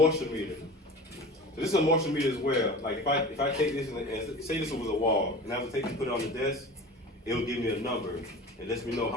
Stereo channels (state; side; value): normal; both; correlation 0.36